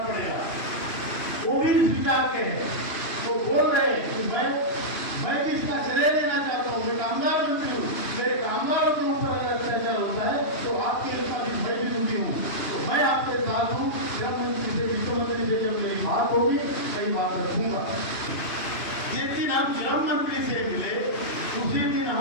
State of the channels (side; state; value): right; late; 2.8 ms